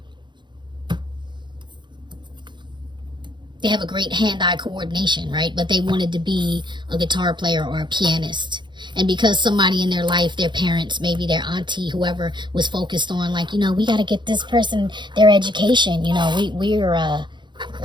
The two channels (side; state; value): left; late; 0.22 ms